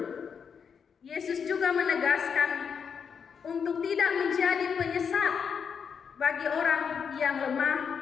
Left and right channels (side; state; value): right; quieter; 6.6 dB